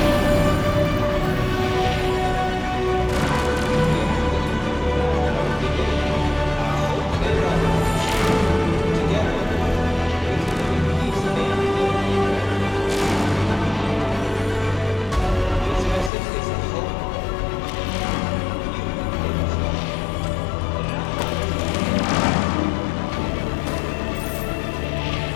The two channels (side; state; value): right; drops out; at 16.1 s